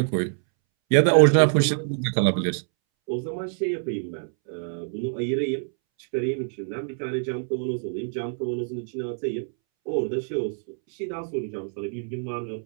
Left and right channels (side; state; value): left; silent; 61 dB below the other